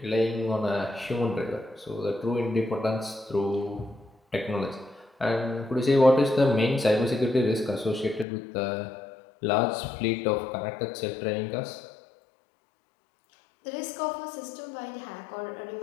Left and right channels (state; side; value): drops out; right; at 8.2 s